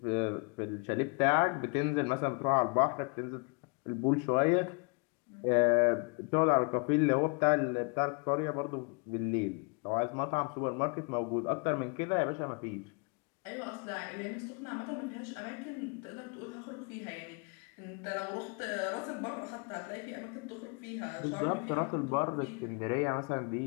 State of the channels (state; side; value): quieter; right; 35.0 dB